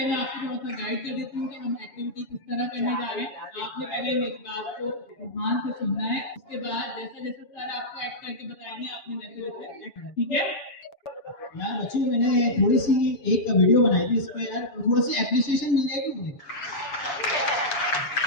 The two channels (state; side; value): late; right; 7.2 ms